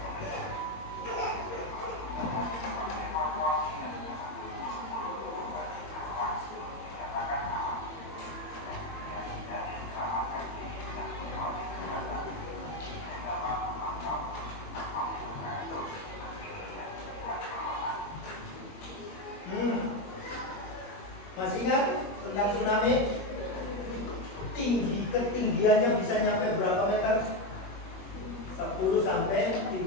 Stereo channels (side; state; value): right; late; 21 ms